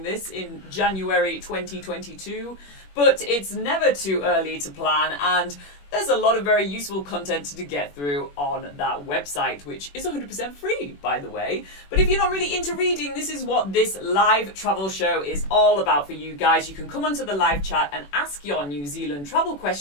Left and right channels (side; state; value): right; late; 21 ms